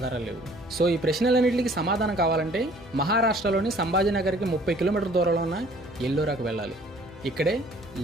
లేవు. సో ఈ ప్రశ్నలన్నింటికి సమాధానం కావాలంటే మహారాష్ట్రలోని సంభాజీనగర్కి 30 కిలోమీటర్ల దూరంలో ఉన్న ఎల్లోరాకు వెళ్ళాలి. ఇక్కడే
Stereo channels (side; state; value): both; normal; correlation 0.55